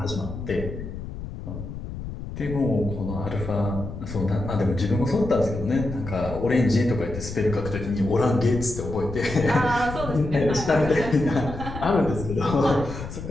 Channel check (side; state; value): left; noise; rumble, 9 dB below the sound